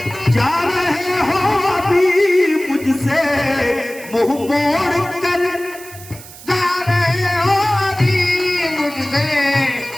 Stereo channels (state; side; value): noise; right; hiss, 17 dB below the sound